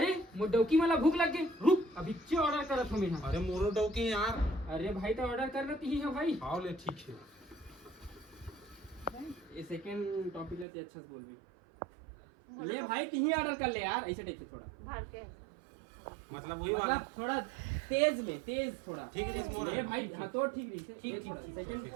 मुडौकी मला भूख लग गई, रुक अभी चे ऑर्डर करत हूं मैं। अरे मोरटो की यार अरे भाई तो ऑर्डर कर रही है भाई। हाँ ले ठीक है ये सेकंड टॉपिक लेते अच्छा से बोल भी ले भाई तही ऑर्डर कर ले यार ऐसे टाइप से थोड़ा भाड़ के मतलब वही वाला मतलब थोड़ा तेज थोड़ा ठीक है ले भाई हाँ तो ठीक रही ठीक सेकंड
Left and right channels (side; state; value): left; drops out; at 10.7 s